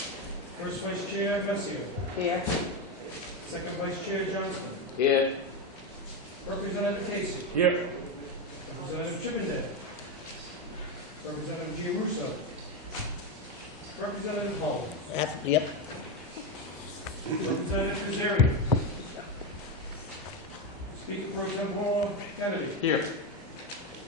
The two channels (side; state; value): both; normal; correlation 0.11